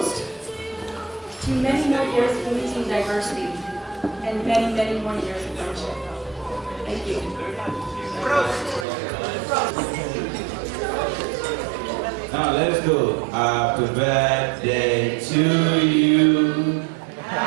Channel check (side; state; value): left; drops out; at 8.8 s